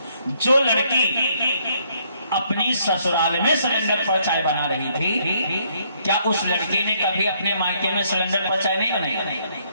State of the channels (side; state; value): both; inverted; correlation -0.69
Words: जो लड़की अपनी ससुराल में सिलेंडर पर चाय बना रही थी, क्या उस लड़की ने कभी अपने मायके में सिलेंडर पर चाय नहीं बनाई?